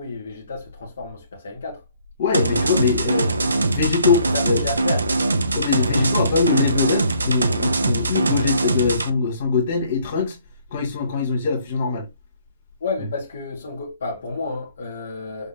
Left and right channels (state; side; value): inverted; both; correlation -0.64